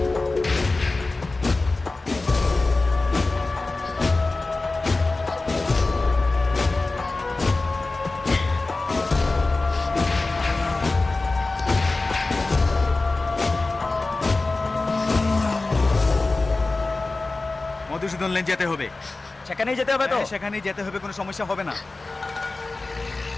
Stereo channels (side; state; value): right; quieter; 3.4 dB